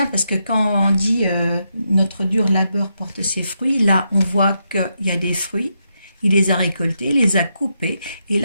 parce que quand on dit notre dur labeur porte ses fruits, là on voit qu'il y a des fruits, il les a récoltés, il les a coupés, et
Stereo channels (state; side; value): inverted; both; correlation -0.82